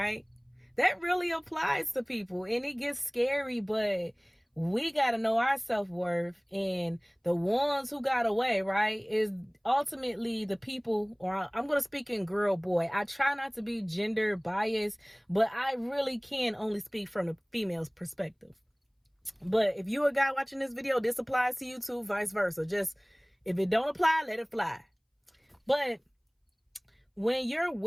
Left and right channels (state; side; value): identical; both; correlation 1.00